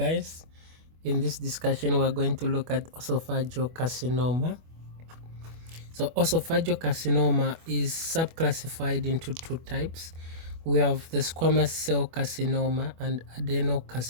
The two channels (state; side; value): late; left; 25 ms